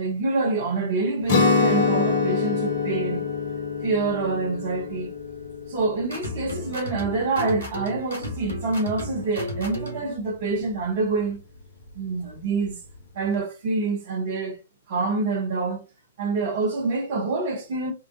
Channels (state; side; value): inverted; both; correlation -0.32